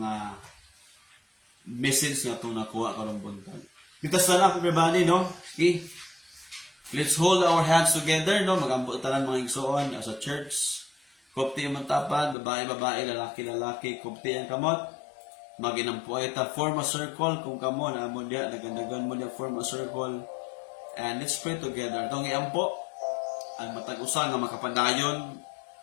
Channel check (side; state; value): right; drops out; at 12.4 s